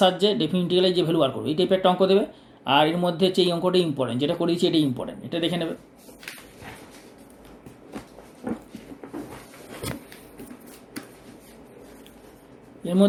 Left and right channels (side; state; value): both; identical; correlation 1.00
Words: ডেফিনিট ইন্টিগ্রালের যে ভ্যালু বার করবে, এই টাইপের একটা অঙ্ক দেবে। আর এর মধ্যে হচ্ছে এই অঙ্কটাই ইম্পর্টেন্ট, যেটা করে দিচ্ছি এটাই ইম্পর্টেন্ট, এটা দেখে নেবে। এর